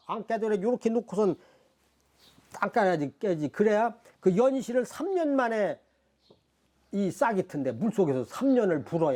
안 깨져. 요렇게 놓고선 안 깨지. 그래야 그 연실을 3년 만에 이 싹이 튼데 물속에서 3년을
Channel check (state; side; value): identical; both; correlation 1.00